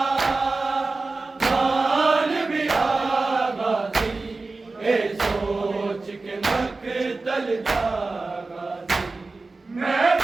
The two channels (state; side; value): quieter; left; 3.6 dB